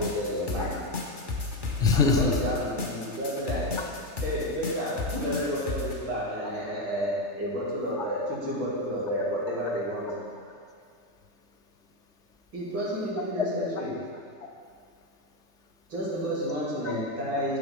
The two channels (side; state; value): left; late; 3.3 ms